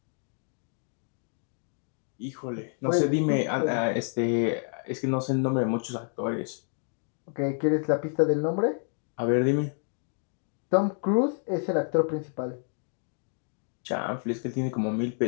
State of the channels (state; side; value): silent; right; 59 dB below the other